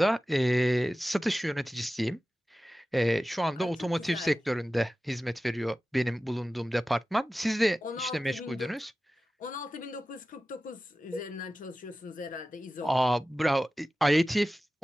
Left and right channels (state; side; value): normal; both; correlation 0.95